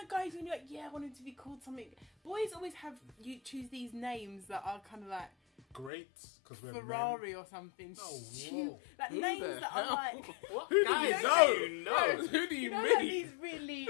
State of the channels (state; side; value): drops out; right; at 5.9 s